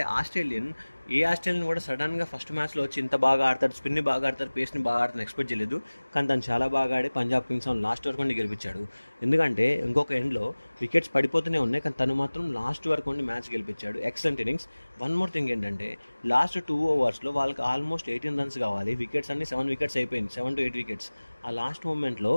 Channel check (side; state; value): both; inverted; correlation -1.00